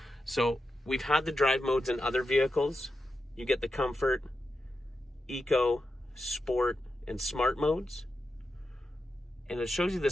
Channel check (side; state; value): both; normal; correlation 0.89